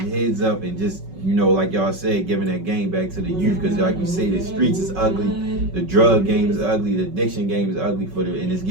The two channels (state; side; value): late; left; 5.3 ms